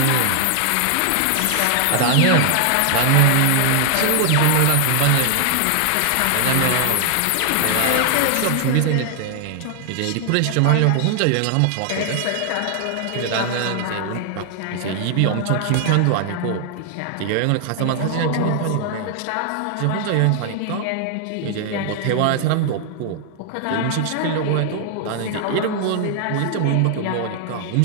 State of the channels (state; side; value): different; both; correlation 0.00